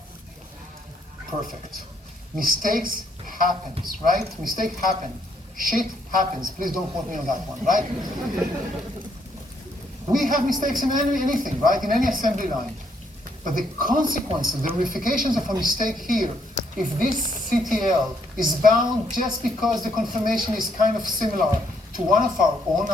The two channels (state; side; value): normal; both; correlation 0.71